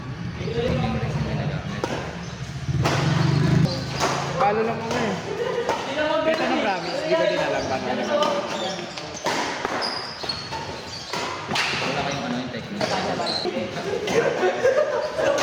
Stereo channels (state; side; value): identical; both; correlation 1.00